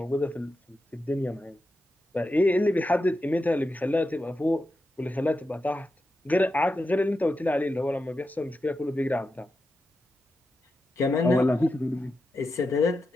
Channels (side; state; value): both; normal; correlation 0.89